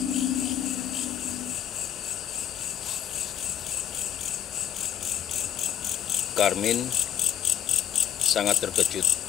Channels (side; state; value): right; quieter; 9.8 dB